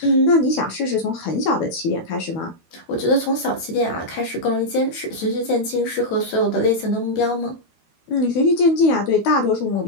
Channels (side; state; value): right; late; 12 ms